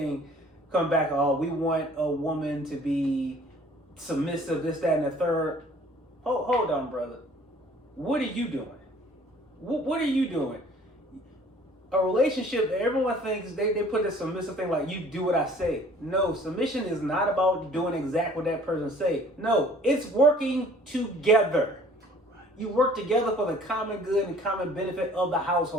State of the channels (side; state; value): both; normal; correlation 0.53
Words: come back. Oh, we want a woman to be submissive, this, that, and the third. Hold on, brother. What are you doing? What are you doing? A relationship, everyone thinks they put this submissive thing like you do what I say. No, submission is not about doing exactly what that person say. No, it's working together. You work together for the common good and common benefit of the